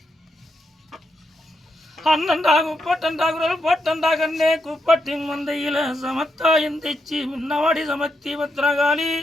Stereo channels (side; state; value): both; normal; correlation 0.82